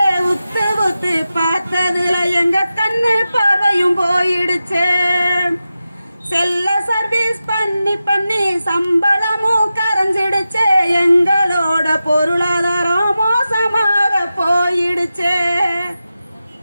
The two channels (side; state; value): both; inverted; correlation -0.92